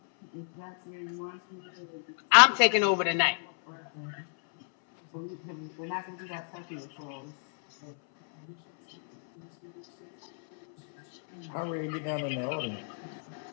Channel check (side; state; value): right; silent; 58 dB below the other